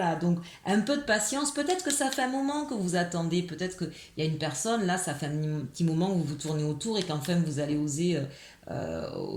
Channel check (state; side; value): identical; both; correlation 1.00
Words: donc un peu de patience. Peut-être que ça fait un moment que vous attendez. Peut-être qu'il y a une personne, là, ça fait un petit moment que vous vous tournez autour et qu'enfin vous allez oser